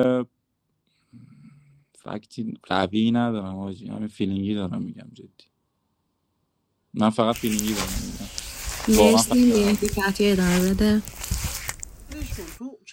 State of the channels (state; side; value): identical; both; correlation 1.00